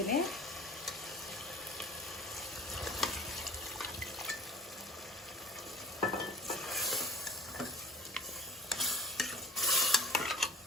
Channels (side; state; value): both; normal; correlation 0.44